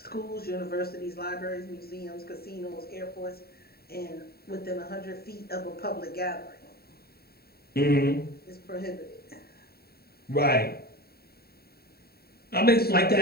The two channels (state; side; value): late; right; 0.45 ms